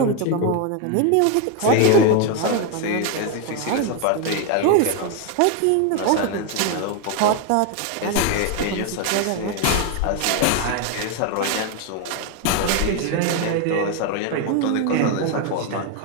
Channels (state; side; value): different; both; correlation 0.01